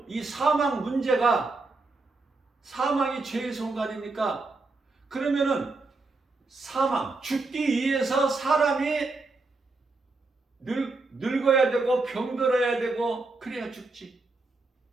이 사망 문제가, 사망이 죄의 손가락입니까? 그러면은 사망, 죽기 위해서 사람이 늙어야 되고 병들어야 되고 그래야 죽지.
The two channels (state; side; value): quieter; left; 3.5 dB